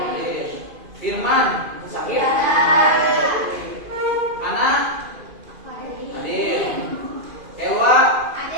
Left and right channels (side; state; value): left; late; 2.5 ms